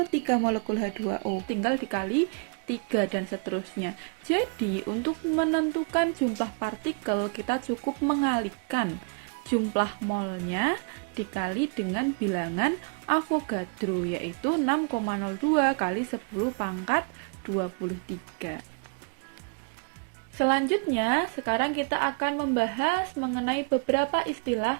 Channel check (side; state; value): left; quieter; 37.8 dB